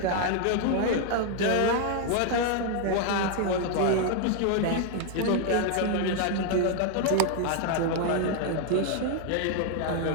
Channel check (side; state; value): both; different; correlation 0.00